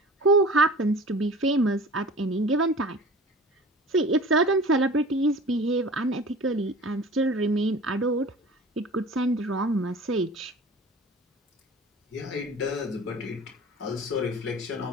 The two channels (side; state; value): both; normal; correlation 0.40